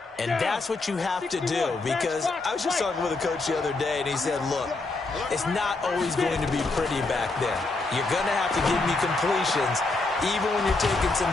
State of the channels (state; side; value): quieter; right; 3.4 dB